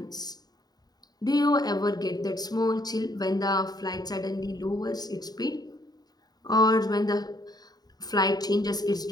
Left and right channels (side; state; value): right; late; 0.19 ms